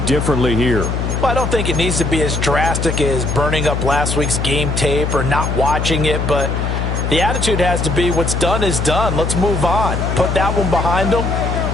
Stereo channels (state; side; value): noise; left; hum, 1 dB below the sound